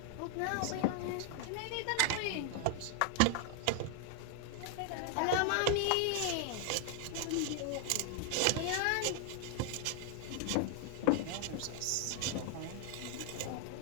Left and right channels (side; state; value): both; different; correlation 0.00